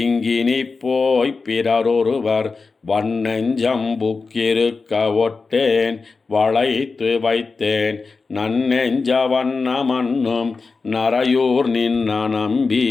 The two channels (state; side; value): quieter; right; 4.3 dB